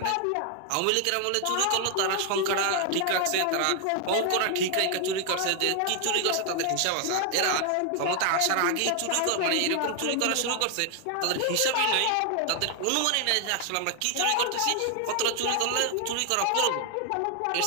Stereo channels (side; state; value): both; different; correlation 0.00